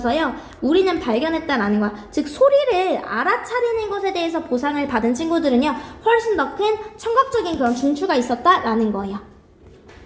우리는 발견했다라는 거야. 즉 소리를 알아차리는 것에 대해서 보상을 받은 친구들은요. 훨씬 더 큰 청각적인 그런 중추가 있었다라는 거예요.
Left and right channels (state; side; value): identical; both; correlation 1.00